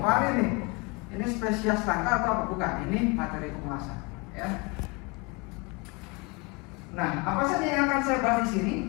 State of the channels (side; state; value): right; quieter; 27.9 dB